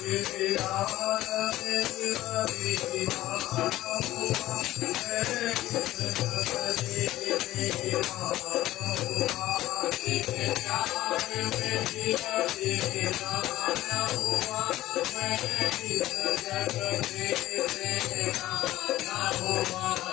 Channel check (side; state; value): right; quieter; 15.4 dB